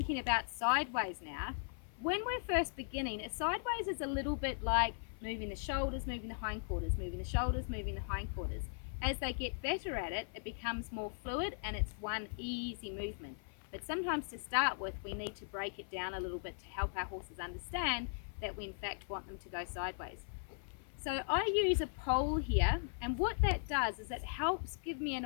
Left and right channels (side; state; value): right; silent; 52 dB below the other